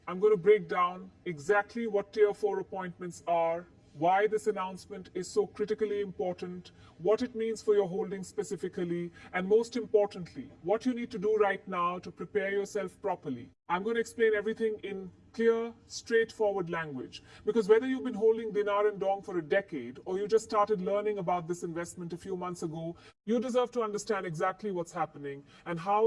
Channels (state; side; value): identical; both; correlation 1.00